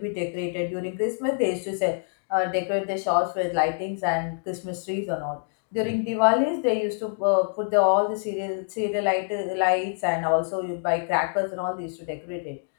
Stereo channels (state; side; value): silent; right; digital silence